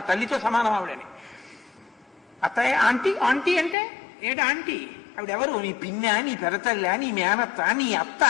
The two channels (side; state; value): right; drops out; at 3.8 s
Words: తల్లితో సమానం ఆవిడని. అత్తయ్య ఆంటీ ఆంటీ అంటే ఏంటి ఆంటీ? ఆవిడెవరు? నీ పిన్న, నీ పెరతల్లా, నీ మేనత్త, నీ అత్త